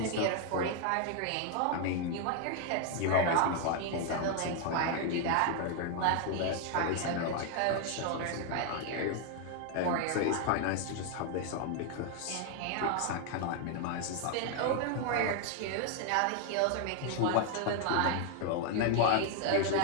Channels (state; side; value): different; both; correlation 0.00